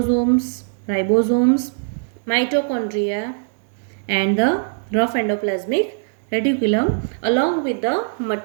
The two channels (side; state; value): left; silent; digital silence